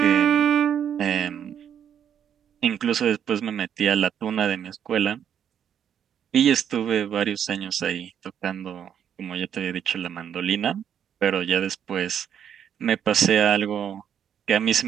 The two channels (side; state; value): left; quieter; 8.9 dB